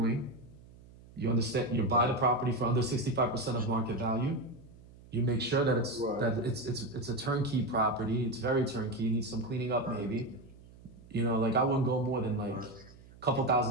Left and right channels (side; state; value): right; noise; hum, 22 dB below the sound